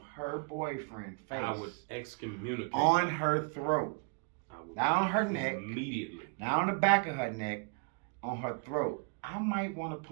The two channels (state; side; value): quieter; left; 36.7 dB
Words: her boyfriend face I would excommunicate. on her throat, I would not on her neck, immediately. not on the back of her neck, on her throat, I might want to